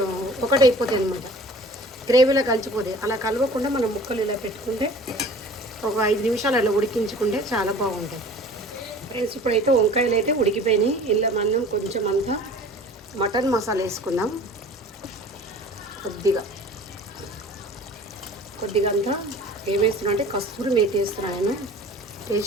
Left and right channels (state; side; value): normal; both; correlation 0.45